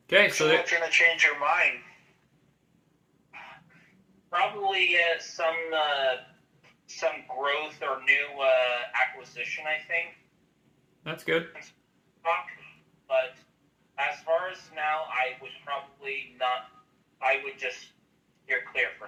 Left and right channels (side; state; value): both; identical; correlation 1.00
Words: Okay. So what's gonna change your mind? Probably some growth or new acquisition, I think. That's good. But as far as now, I would probably not. I would just steer clear for